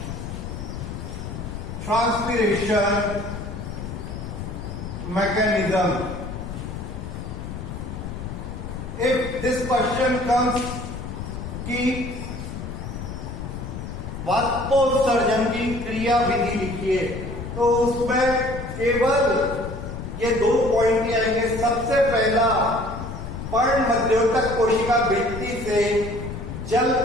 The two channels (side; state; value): left; noise; rumble, 8 dB below the sound